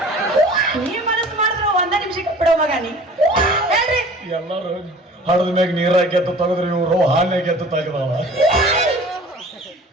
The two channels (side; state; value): both; normal; correlation 0.46